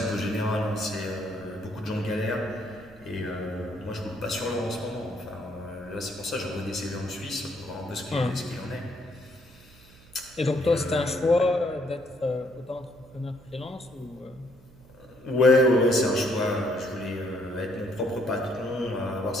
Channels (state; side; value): noise; right; hum, 24 dB below the sound